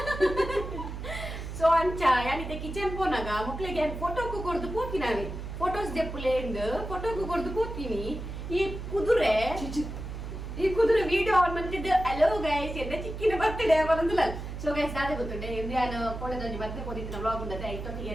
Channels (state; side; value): noise; right; hum, 7 dB below the sound